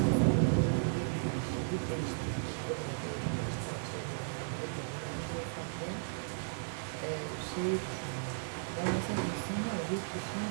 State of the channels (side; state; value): left; silent; 54 dB below the other